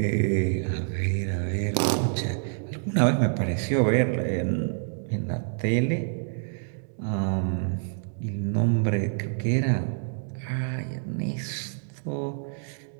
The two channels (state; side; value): silent; left; digital silence